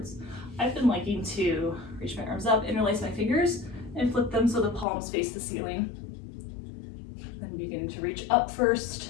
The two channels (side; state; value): right; drops out; at 4.9 s